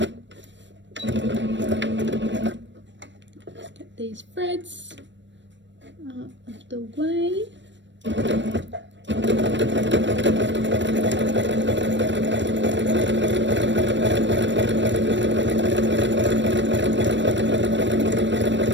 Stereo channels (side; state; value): left; late; 0.53 ms